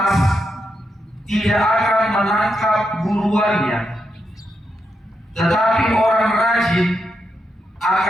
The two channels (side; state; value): both; normal; correlation 0.84